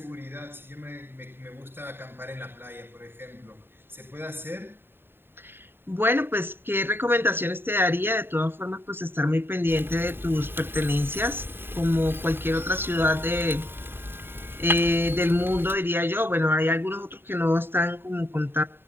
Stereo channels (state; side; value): late; left; 0.11 ms